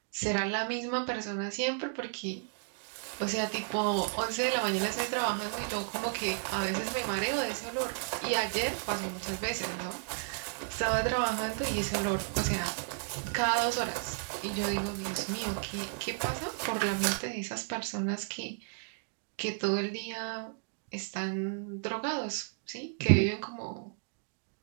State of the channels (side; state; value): left; silent; digital silence